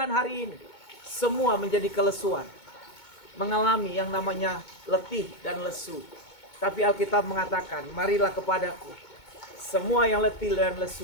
hari ini, semua menjadi kelesuan. Mengalami yang namanya letih dan lesu. Tapi Alkitab mengatakan, marilah kepadaku, semua yang letih dan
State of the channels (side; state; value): right; late; 2.2 ms